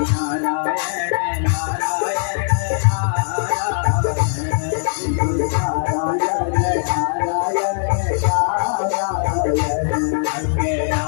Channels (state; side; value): silent; right; digital silence